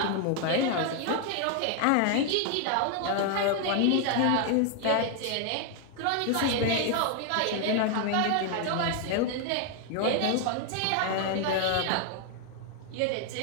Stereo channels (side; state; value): both; different; correlation 0.00